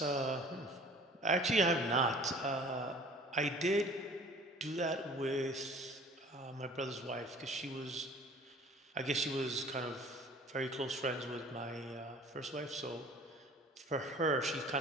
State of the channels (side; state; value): both; normal; correlation 0.48